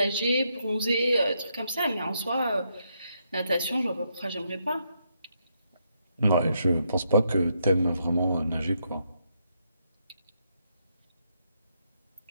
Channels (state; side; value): inverted; both; correlation -0.78